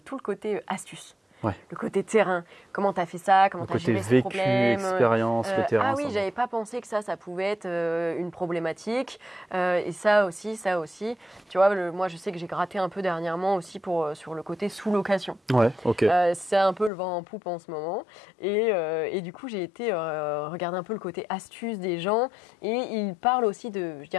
tout le côté astuce. Le côté terrain, comment tu as fait ça, comment tu as géré ce problème. Expérience, le terrain. Ah oui, j'avais pas pensé que ça pouvait être une problématique. Et ça aussi. Tu vois, moi je sais que j'ai gratté un peu dernièrement aussi sur le côté sous-location. Ouais, ok. C'est un peu le vent en poupe en ce moment. Et du coup, j'ai été regarder un peu le côté astuce des gens. Et ils parlent aussi de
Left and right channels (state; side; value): drops out; right; at 16.9 s